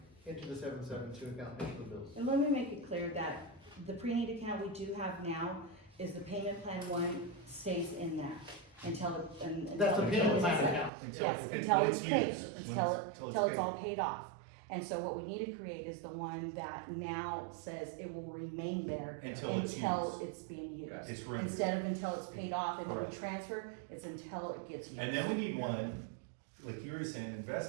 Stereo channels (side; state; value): left; drops out; at 10.9 s